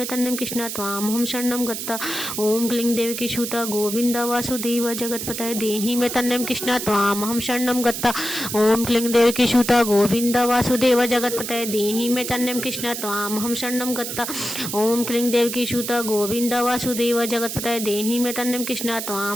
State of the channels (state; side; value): noise; right; hiss, 5 dB below the sound